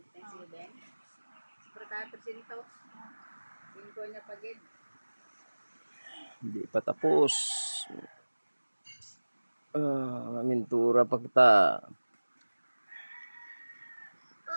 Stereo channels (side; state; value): both; inverted; correlation -1.00